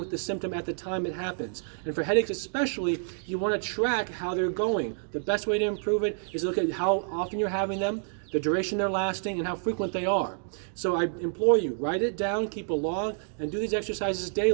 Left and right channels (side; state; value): left; silent; digital silence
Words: the symptom at the time it happens. And for headaches especially, you want to track how they're going. The best way to improve it is look at how often you're having them, the duration they're lasting, and how frequent they are. So I implore you, write it down, keep a log, and do these exercises